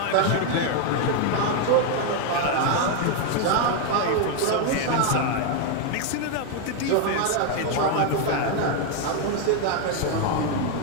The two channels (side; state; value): both; different; correlation 0.01